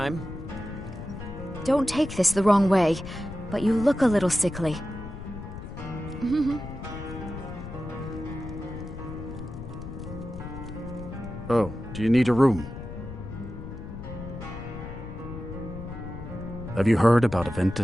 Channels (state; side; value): noise; left; rumble, 10 dB below the sound